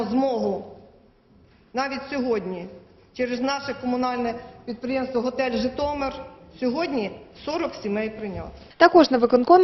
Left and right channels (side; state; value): both; identical; correlation 1.00